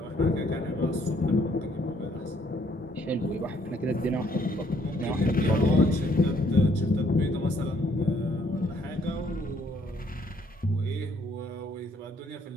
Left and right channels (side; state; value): both; normal; correlation 0.67